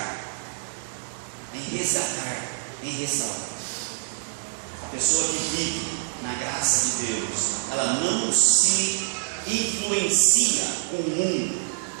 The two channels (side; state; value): left; silent; digital silence